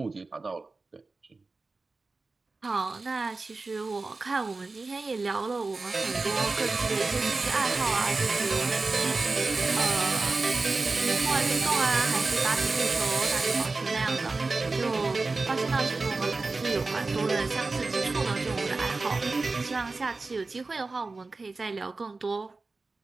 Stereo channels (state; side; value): quieter; left; 3.7 dB